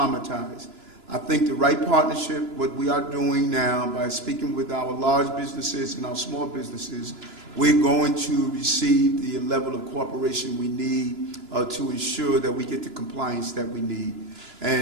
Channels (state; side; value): late; left; 2.9 ms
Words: I think the right partnership, what we are doing now by speaking with our large businesses and our small businesses, we're going to receive the level of cooperation we need to ensure that we get the compliance that we need.